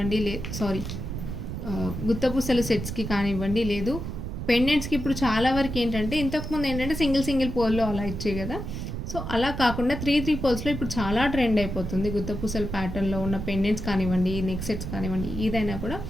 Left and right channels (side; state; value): right; noise; rumble, 6 dB below the sound